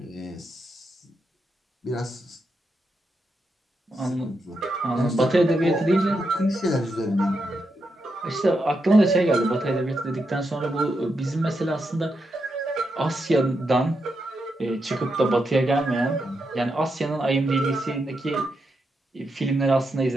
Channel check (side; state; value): both; normal; correlation 0.84